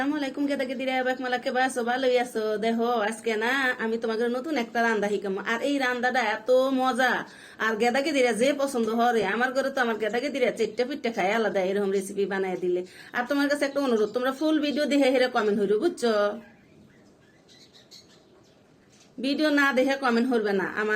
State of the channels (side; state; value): both; identical; correlation 1.00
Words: আলাইকুম কেদাকে দিরা এবার মালাকে বাসো ভালোই আছো দেখো আজকে না আমি তোমাকে নতুন একটা রান্দা শিখাম আর এই রান্দাটা এত মজা আর গেদাকে দিরা যে পছন্দ হরে আমার ঘরে তো আমার গেদাকে দিরা চেট্টা পিট্টা খায় আলাদা এরকম রেসিপি বানায় দিলে আর তোমার কাছে একটা অনুরোধ তোমরা ফুল ভিডিও দেখে হেরে কমেন্ট হইরো বুঝছো ভিডিও না দেখে কমেন্ট করবে না